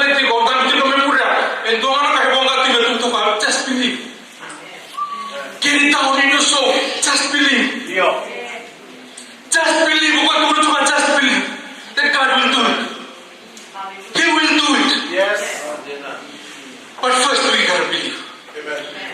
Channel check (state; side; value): identical; both; correlation 1.00